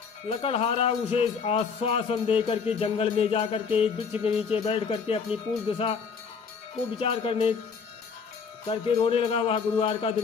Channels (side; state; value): right; quieter; 5.8 dB